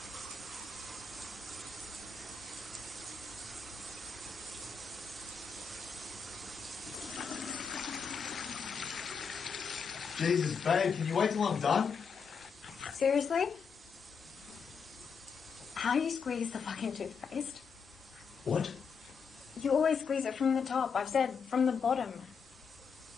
Jesus, babe, can you wait till I'm done? Seriously? How do you squeeze the fucking toothpaste? What? You always squeeze it from the top. I've said from the bottom.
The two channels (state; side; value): quieter; right; 5.8 dB